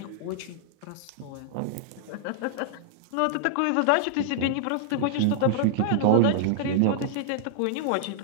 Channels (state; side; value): different; both; correlation -0.01